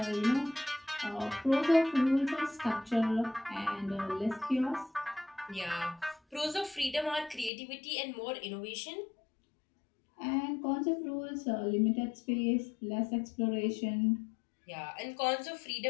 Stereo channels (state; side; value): drops out; right; at 7.5 s